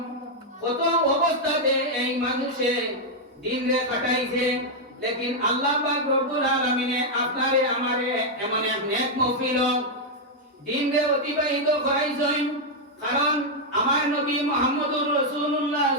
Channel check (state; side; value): normal; both; correlation -0.02